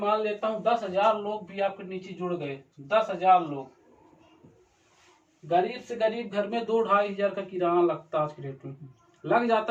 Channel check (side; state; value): both; identical; correlation 1.00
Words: लेता हूँ 10,000 लोग भी आपके नीचे जुड़ गए, 10,000 लोग, गरीब से गरीब घर में 2-2.5 हजार का किराना लगता है आज की डेट में। लग